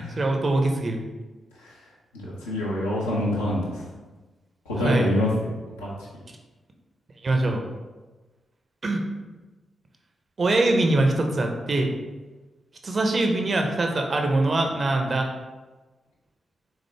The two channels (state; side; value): normal; both; correlation 0.86